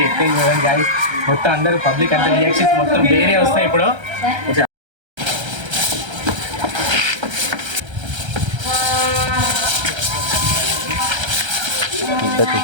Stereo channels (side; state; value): left; late; 1.3 ms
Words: ఎక్కింగ్ చూడండి గైస్. మొత్తం అందరూ పబ్లిక్ అంతా రియాక్షన్స్ మొత్తం వేరే వస్తాయి ఇప్పుడు.